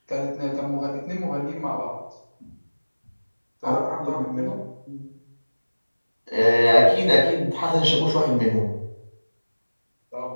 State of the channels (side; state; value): both; inverted; correlation -1.00